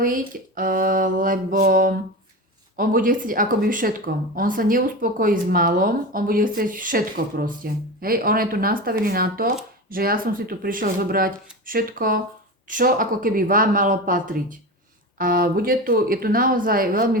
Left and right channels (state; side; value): normal; both; correlation 0.25